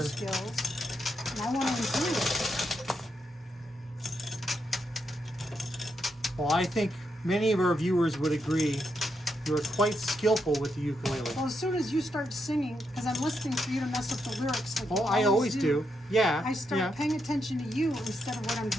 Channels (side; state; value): both; normal; correlation 0.81